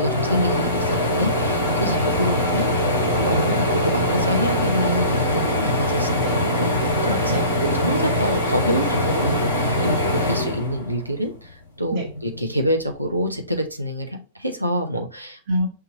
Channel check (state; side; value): inverted; both; correlation -0.45